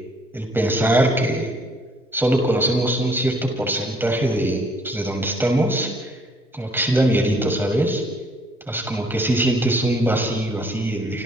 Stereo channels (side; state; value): both; normal; correlation 0.62